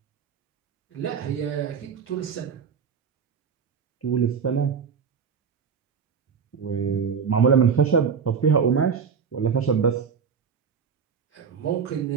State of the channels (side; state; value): left; quieter; 6.4 dB